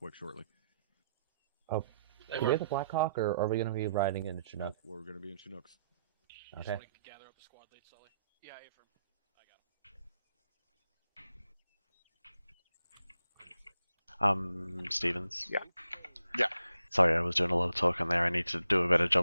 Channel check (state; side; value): inverted; both; correlation -0.79